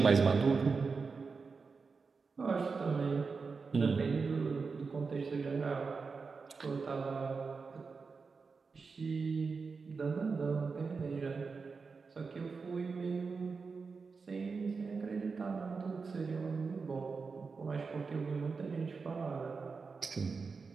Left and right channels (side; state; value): left; quieter; 4.8 dB